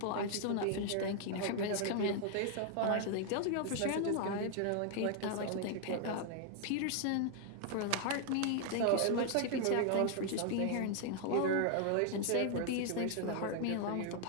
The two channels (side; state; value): both; different; correlation 0.00